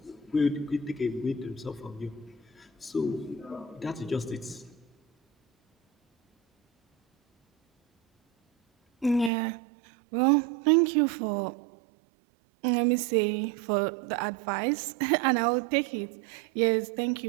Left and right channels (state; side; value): drops out; left; at 9.3 s